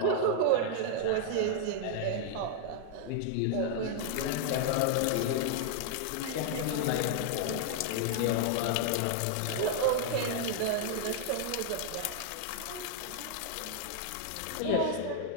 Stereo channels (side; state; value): both; different; correlation -0.01